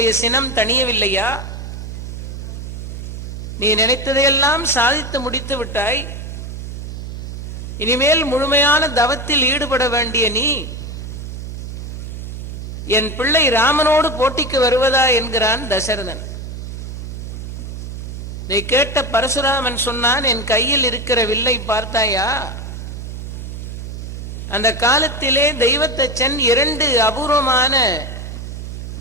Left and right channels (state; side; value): noise; right; hum, 8 dB below the sound